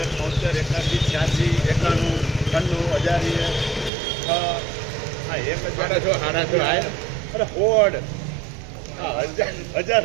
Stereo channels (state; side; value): drops out; left; at 3.9 s